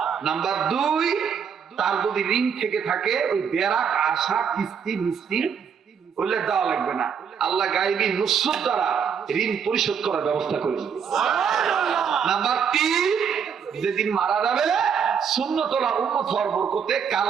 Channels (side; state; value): left; quieter; 7.1 dB